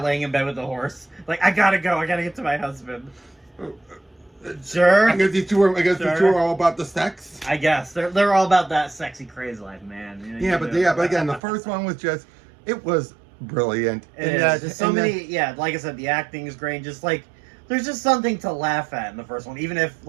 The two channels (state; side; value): drops out; left; at 11.4 s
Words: in bed with the horse. Like, I gotta go, I gotta get to my husband. Sure. I guess these two are all about the sex. I guess they're all about that sexy crazy life, man. But again, the first one was it was brilliant. Like I said, the acting is great. Just like there's just something to laugh at in the first one, even if